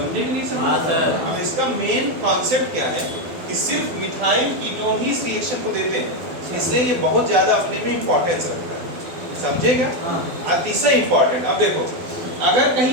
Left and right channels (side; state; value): left; late; 12 ms